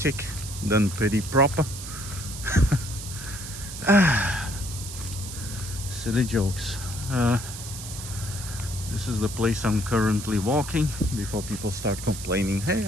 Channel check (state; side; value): noise; right; hiss, 10 dB below the sound